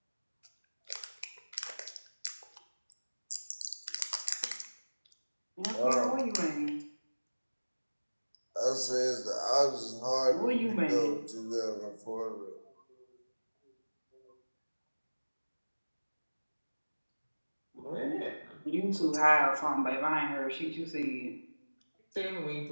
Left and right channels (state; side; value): inverted; both; correlation -1.00